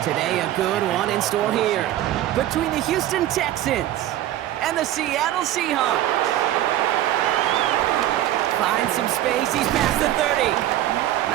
Today, a good one in store here between the Houston Texans and the Seattle Seahawks. Finds some space, he's past the 30.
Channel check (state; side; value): quieter; left; 13.3 dB